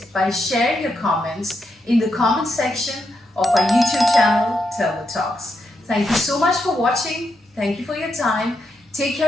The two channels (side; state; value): both; normal; correlation 0.83